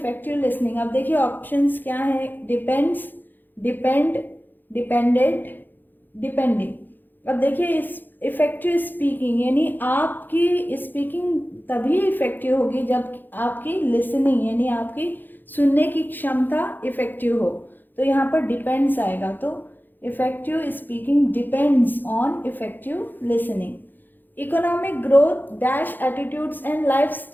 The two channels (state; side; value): late; right; 0.089 ms